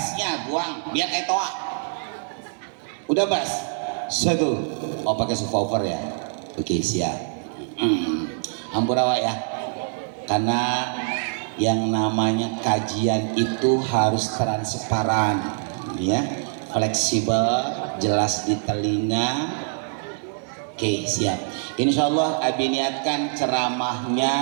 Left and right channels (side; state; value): left; silent; 62 dB below the other